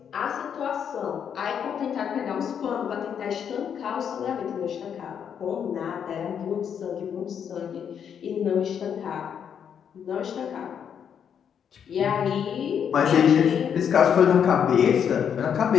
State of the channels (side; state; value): right; quieter; 8.0 dB